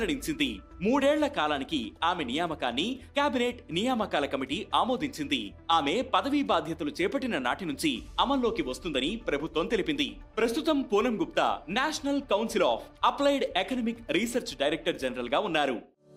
3 ఏళ్ల కాలానికి ఆమె నియామకాన్ని కేబినెట్ నియామకాల కమిటీ ఆమోదించింది. ఆమె పదవీ బాధ్యతలు చేపట్టిన నాటి నుంచి అమల్లోకి వస్తుందని ప్రభుత్వం తెలిపింది. ప్రస్తుతం Poonam Gupta national council of applied economic research director general గా ఉన్నారు.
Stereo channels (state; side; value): identical; both; correlation 1.00